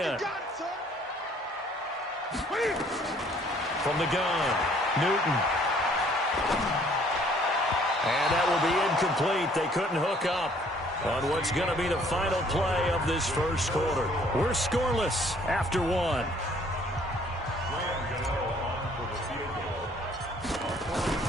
From the gun, Newton. And that will be incomplete. They couldn't hook up on what's going to be the final play of this first quarter. We're scoreless after 1.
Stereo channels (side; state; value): both; normal; correlation 0.60